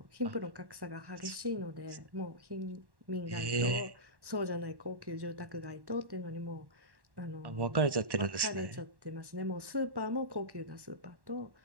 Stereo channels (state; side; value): late; left; 1.1 ms